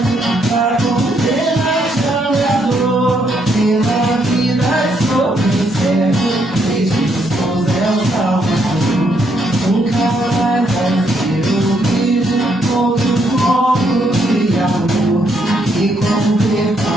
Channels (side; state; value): both; normal; correlation 0.74